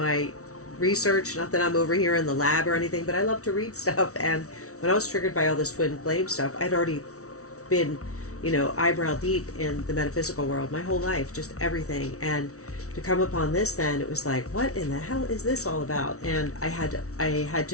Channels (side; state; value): right; late; 0.64 ms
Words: research, not that I'm over here in the lab or anything, but I love to read stuff. And when I was triggered by all this twin flame stuff, I'd already been, eyebrow deep in the metaphysical world my whole life, just everything. And to come upon this, then it was like, what in the hell is this all about? And I had